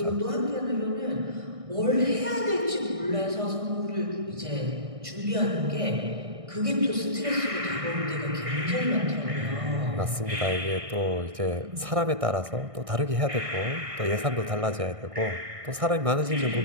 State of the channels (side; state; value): left; late; 1.6 ms